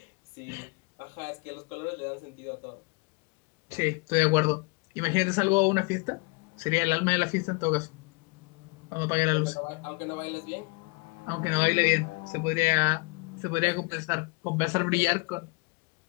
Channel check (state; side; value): quieter; right; 28.5 dB